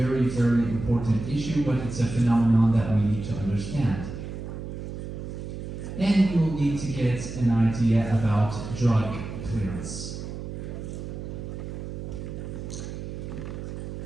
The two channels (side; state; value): right; noise; hum, 8 dB below the sound